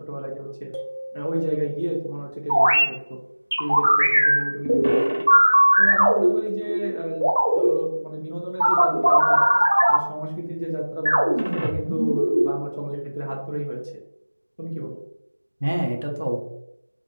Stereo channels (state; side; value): inverted; both; correlation -1.00